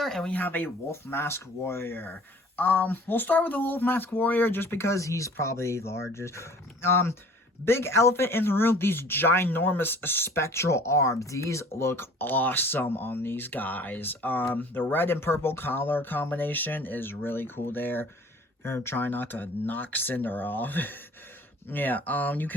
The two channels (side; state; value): both; normal; correlation 0.49